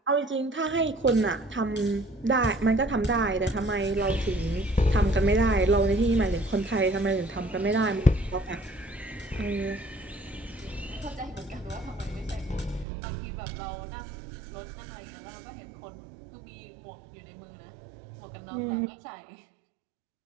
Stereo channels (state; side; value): drops out; left; at 12.9 s